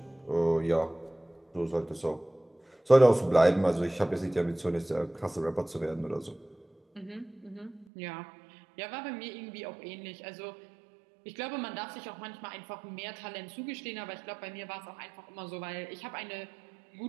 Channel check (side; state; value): left; drops out; at 7.9 s